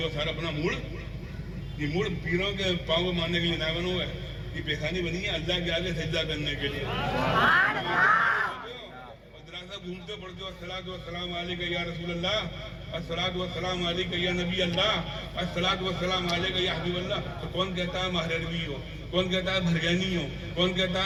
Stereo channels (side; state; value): both; identical; correlation 1.00